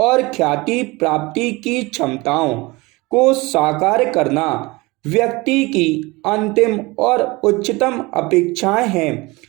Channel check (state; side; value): quieter; left; 23.3 dB